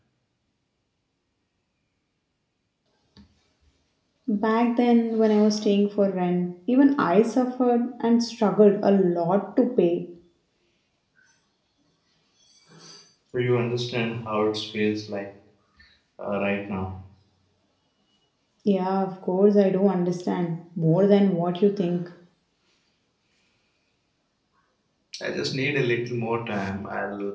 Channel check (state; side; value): identical; both; correlation 1.00